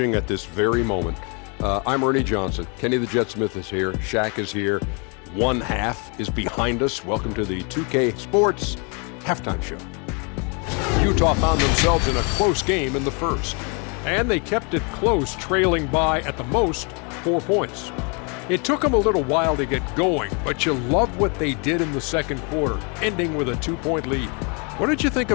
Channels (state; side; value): quieter; right; 34.4 dB